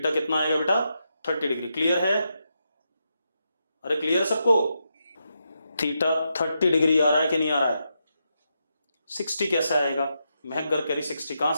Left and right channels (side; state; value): both; inverted; correlation -0.84